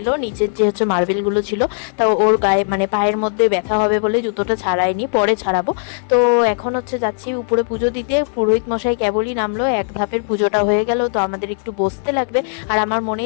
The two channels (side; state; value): right; silent; digital silence